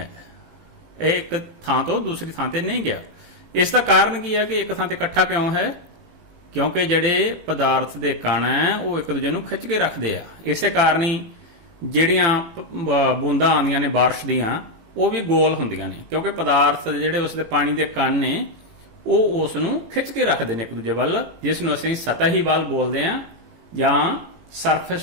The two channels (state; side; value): late; left; 18 ms